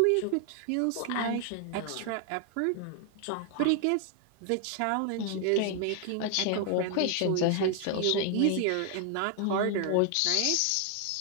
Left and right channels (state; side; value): different; both; correlation 0.00